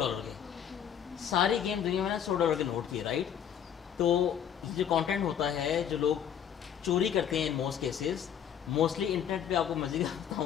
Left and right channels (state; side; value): quieter; right; 8.9 dB